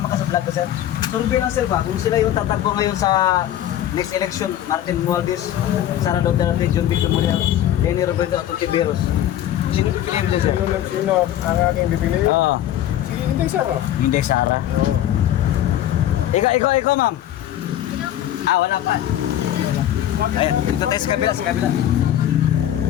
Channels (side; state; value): right; quieter; 11.9 dB